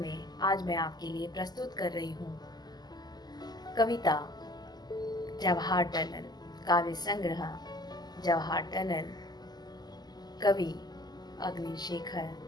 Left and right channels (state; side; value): late; right; 0.20 ms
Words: में आज मैं आपके लिए प्रस्तुत कर रही हूँ कविता जवाहर टनल। काव्य संग्रह जवाहर टनल। कवि अग्निशेखर।